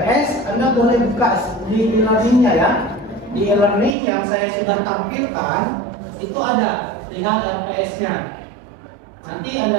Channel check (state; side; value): drops out; left; at 4.0 s